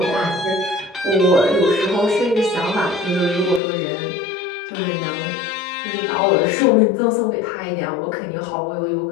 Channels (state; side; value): drops out; right; at 3.6 s